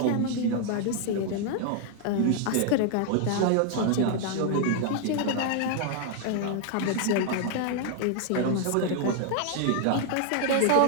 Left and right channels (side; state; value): both; different; correlation 0.00